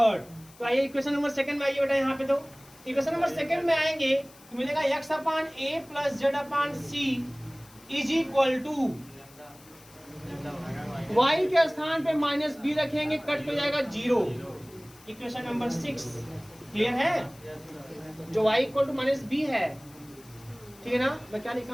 तो आइए इक्वेशन नंबर सेकेंड में आइए बेटा। यहाँ पे तो इक्वेशन नंबर सेकेंड में आएंगे तो मिलेगा x upon a plus z upon c is equal to y के स्थान पे माइनस b रखेंगे, कट हो जाएगा 0। इक्वेशन नंबर 6 क्लियर है, जो y equal to minus b है, ठीक है ना। मैं क्या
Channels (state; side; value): noise; left; hiss, 24 dB below the sound